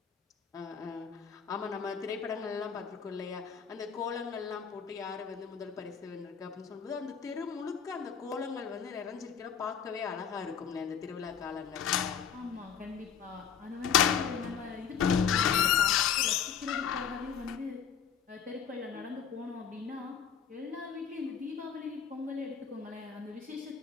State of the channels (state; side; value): quieter; right; 7.5 dB